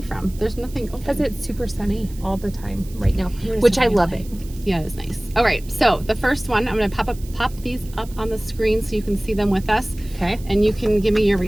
from. There's nothing open. Because it's super sunny all the time right now, which I love it. Yeah, it's nice. All right, so the first one, I'm going to pop these up on the screen so you can see them with us. Okay. And you can give me your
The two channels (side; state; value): right; noise; hiss, 21 dB below the sound